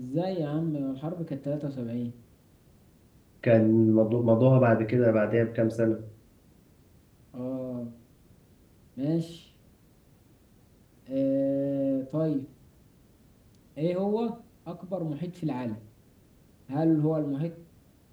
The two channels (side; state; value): both; identical; correlation 1.00